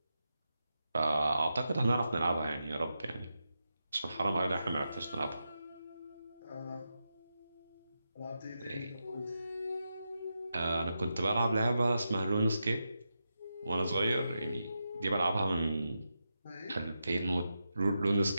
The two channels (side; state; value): both; inverted; correlation -0.88